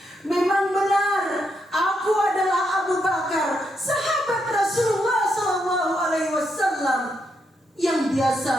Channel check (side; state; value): both; normal; correlation 0.80